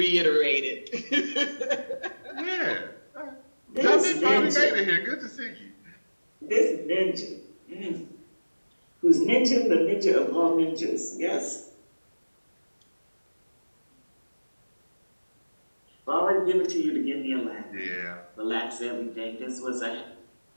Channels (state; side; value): inverted; both; correlation -1.00